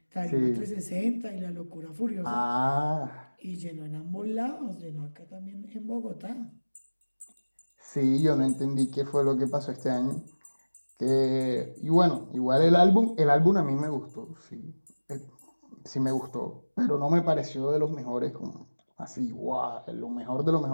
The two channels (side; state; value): both; inverted; correlation -1.00